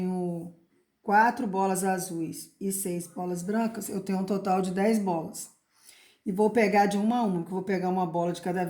4 bolas azuis e 6 bolas brancas, eu tenho um total de 10 bolas. E vou pegar de uma a uma, que eu vou pegar uma bola de cada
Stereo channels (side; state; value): both; identical; correlation 1.00